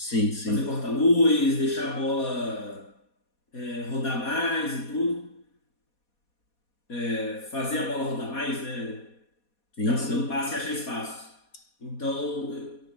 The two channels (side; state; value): right; late; 4.2 ms